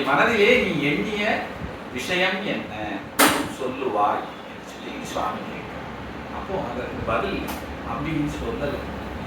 மனதிலே நீ எண்ணிய விஷயம் என்ன சொல்லுவாய் என்று சொல்லி சுவாமி கேட்கிறார். அப்போ அதற்கு பதில் அம்பியின் சொல்லல,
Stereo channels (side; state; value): both; identical; correlation 1.00